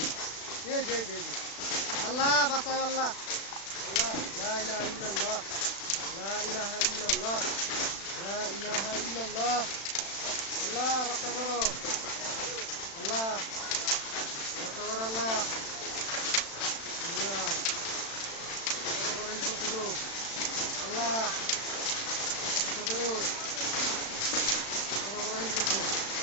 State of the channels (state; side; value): late; right; 36 ms